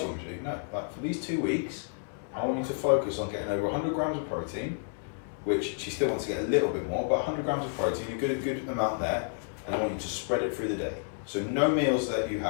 want me to do? No. Like for these 2 weeks, I want you to focus on getting over 100 grams of protein, which she still wants to get a little bit more, but 100 grams of protein, a good amount there, and I want you to spread it through the day. So no meals that you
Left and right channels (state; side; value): silent; right; 58 dB below the other